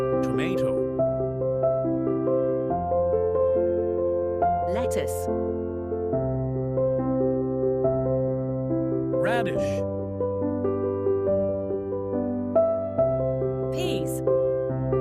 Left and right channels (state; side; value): identical; both; correlation 1.00